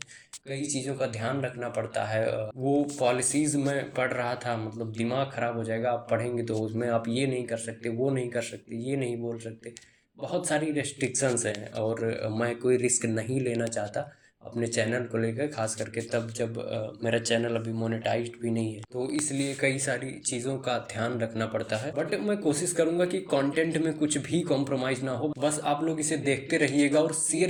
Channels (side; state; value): both; identical; correlation 1.00